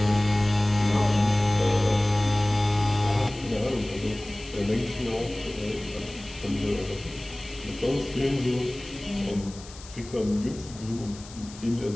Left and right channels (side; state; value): left; noise; hiss, 18 dB below the sound